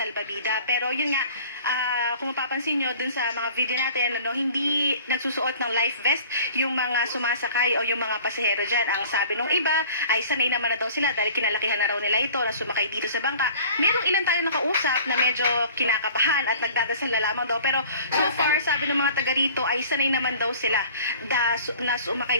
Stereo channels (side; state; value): both; inverted; correlation -0.47